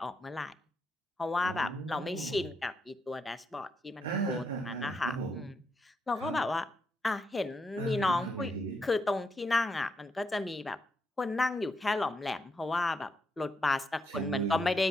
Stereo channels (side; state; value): both; normal; correlation 0.80